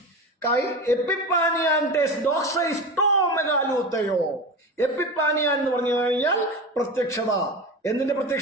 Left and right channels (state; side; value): normal; both; correlation 0.27